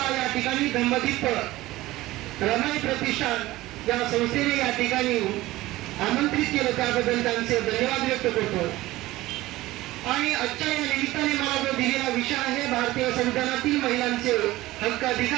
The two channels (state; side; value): quieter; left; 17.6 dB